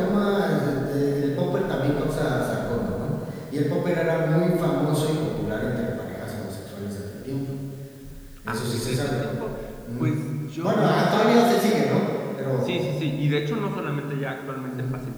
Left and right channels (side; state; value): both; identical; correlation 1.00